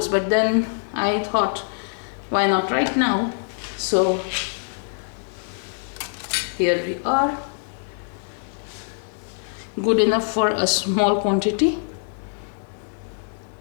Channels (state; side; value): silent; right; digital silence